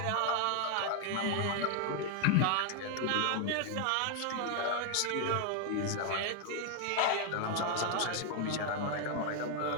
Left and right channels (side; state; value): both; different; correlation 0.01